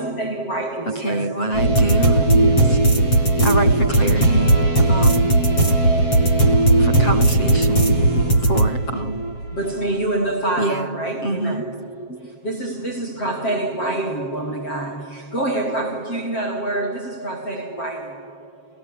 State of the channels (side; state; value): right; late; 7.5 ms